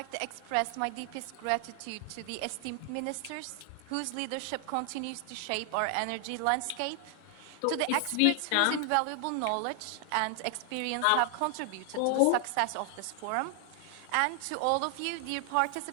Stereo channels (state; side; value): different; both; correlation 0.00